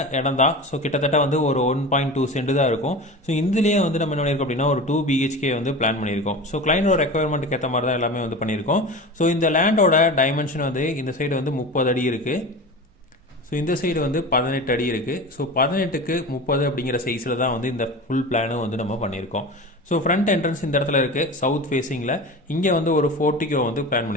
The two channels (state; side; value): normal; both; correlation 0.31